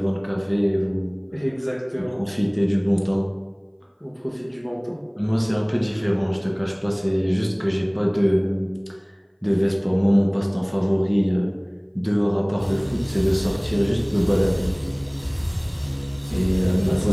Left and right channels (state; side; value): identical; both; correlation 1.00